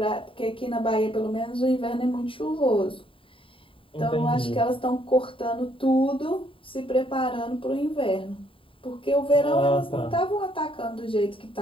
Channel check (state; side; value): late; right; 0.25 ms